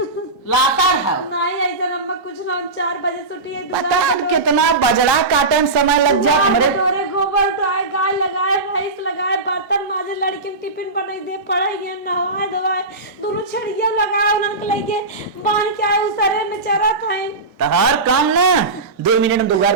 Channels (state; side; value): quieter; left; 3.3 dB